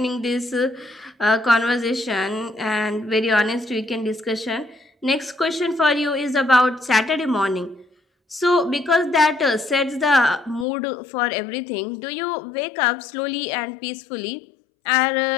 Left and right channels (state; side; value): drops out; right; at 10.7 s